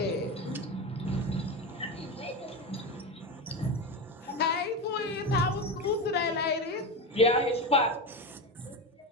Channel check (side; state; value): both; normal; correlation 0.19